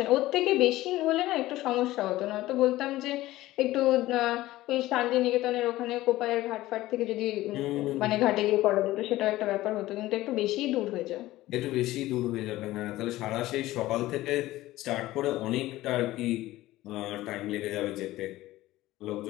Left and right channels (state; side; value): quieter; right; 16.6 dB